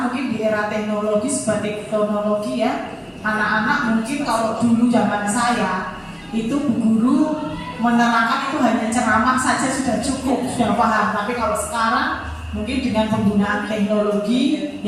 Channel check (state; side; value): identical; both; correlation 1.00